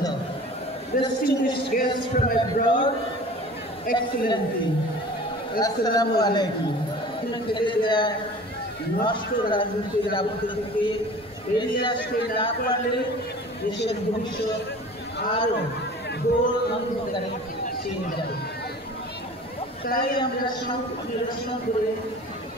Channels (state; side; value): normal; both; correlation 0.42